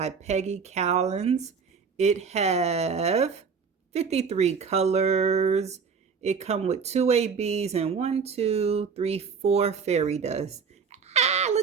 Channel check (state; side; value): quieter; left; 5.7 dB